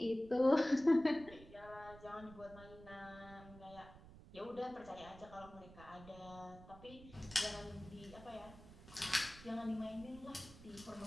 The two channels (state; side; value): noise; right; rumble, 18 dB below the sound